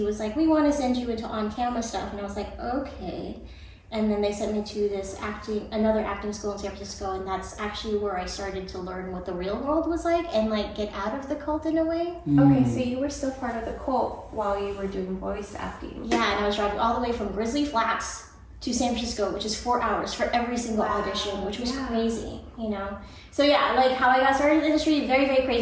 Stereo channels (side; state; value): both; identical; correlation 1.00